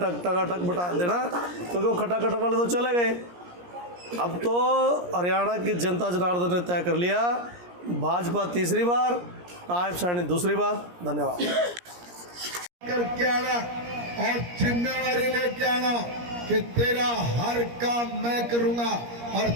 बटा देना, क्योंकि वो खटाखट वाले तो चले गए। अब तो हरियाणा की जनता जनार्दन ने तय कर लिया, भाजपा तीसरी बार, नायब साहनी दूसरी बार। धन्यवाद। करके आना और जिम्मेवारी लेके आना कि तेरा हर काम मैं करूंगा और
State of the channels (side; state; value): left; late; 17 ms